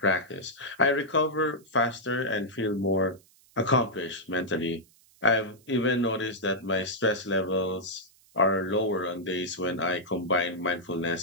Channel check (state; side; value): noise; right; hiss, 30 dB below the sound